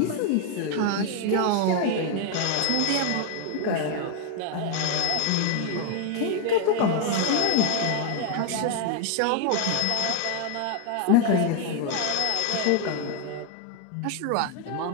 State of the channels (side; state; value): both; different; correlation 0.01